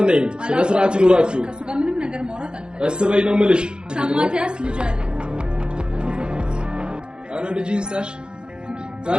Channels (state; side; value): late; left; 0.049 ms